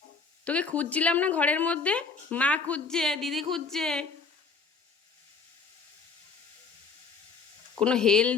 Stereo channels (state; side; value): quieter; right; 4.9 dB